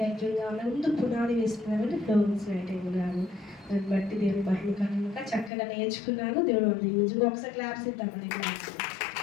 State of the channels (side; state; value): right; drops out; at 5.5 s